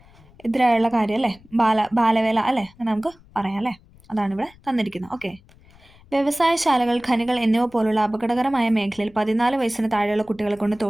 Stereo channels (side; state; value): left; noise; rumble, 26 dB below the sound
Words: കാര്യം, അല്ലേ? ബാലവേല, അല്ലേ? അങ്ങനെ നമുക്ക് പറയാം, അല്ലേ? അതാണ് ഇവിടെ തന്നിരിക്കുന്നത്. ഓക്കെ, വ്യവസായശാലകൾ, ഖനികൾ എന്നിവ പോലുള്ള അപകടകരമായ മേഖലയിൽ 14 വയസ്സിന് താഴെയുള്ള കുട്ടികളെ കൊണ്ട്